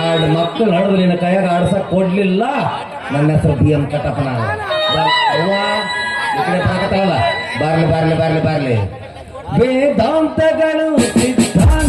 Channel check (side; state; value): both; identical; correlation 1.00